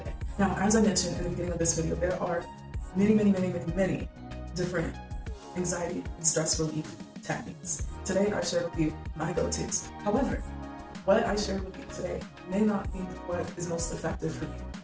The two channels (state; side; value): identical; both; correlation 1.00